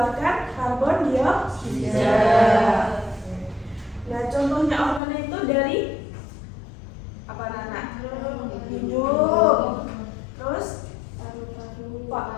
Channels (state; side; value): drops out; right; at 5.0 s